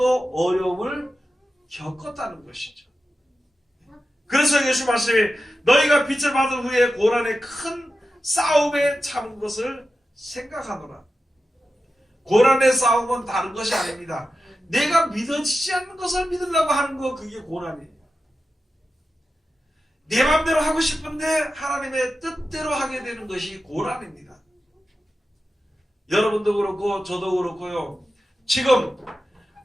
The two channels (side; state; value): both; normal; correlation 0.92